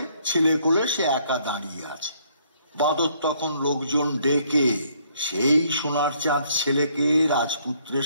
ছেলে কোলে সে একা দাঁড়িয়ে আছে। বাঁদর তখন লোকজন ডেকে সেই সোনার চাঁদ ছেলেকে রাজপুত্রের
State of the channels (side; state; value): both; inverted; correlation -0.67